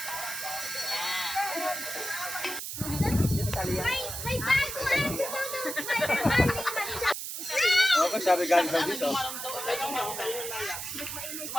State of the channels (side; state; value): right; noise; hiss, 6 dB below the sound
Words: Okay, sabi galing daw dito.